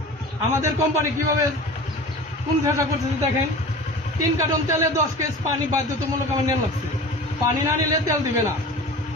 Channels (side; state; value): both; normal; correlation 0.37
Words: আমাদের কোম্পানি কিভাবে কোন ব্যবসা করতেছে দেখেন। 3 কার্টন তেলে 10 কেজ পানি বাধ্যতামূলক আমার নেওয়া লাগছে। পানি না নিলে তেল দিবে না।